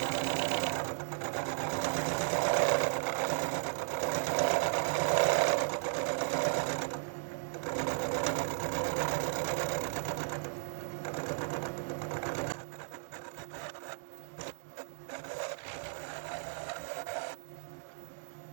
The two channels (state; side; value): silent; left; digital silence